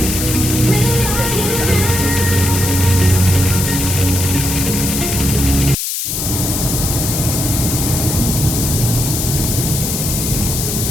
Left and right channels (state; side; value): noise; left; hiss, 2 dB below the sound